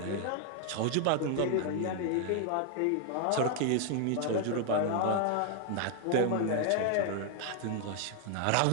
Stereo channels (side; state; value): both; different; correlation 0.00